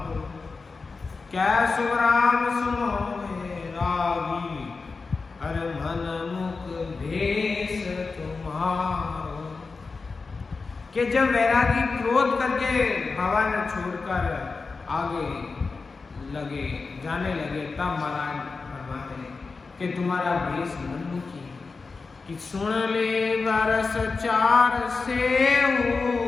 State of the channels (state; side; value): quieter; right; 4.3 dB